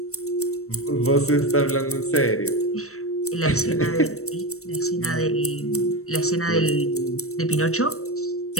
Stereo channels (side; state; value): right; late; 0.63 ms